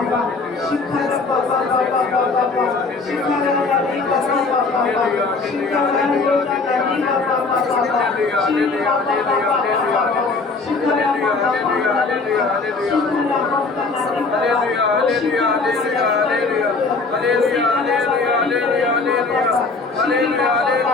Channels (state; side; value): quieter; right; 4.1 dB